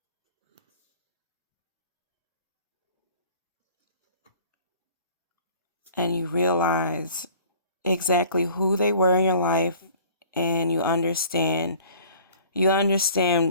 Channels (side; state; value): both; inverted; correlation -0.50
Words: And you realize exactly who they were in your life, and you understand